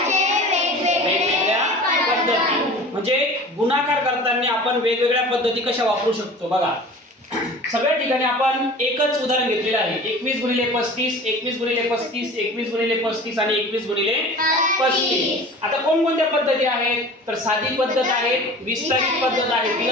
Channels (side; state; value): both; normal; correlation 0.40